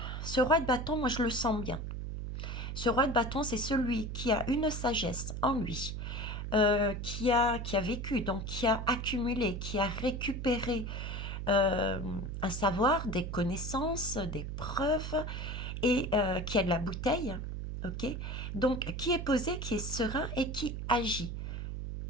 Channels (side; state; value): right; noise; hum, 5 dB below the sound